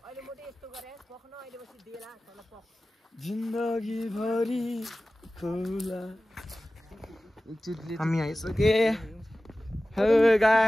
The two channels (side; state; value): both; normal; correlation 0.96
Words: जिन्दगी भरि खोला हामी आइसके हेलो